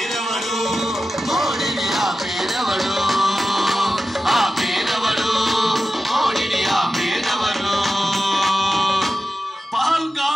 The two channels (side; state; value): both; normal; correlation 0.92